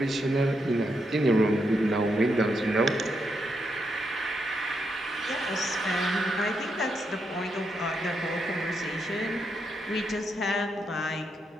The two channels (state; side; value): normal; both; correlation 0.81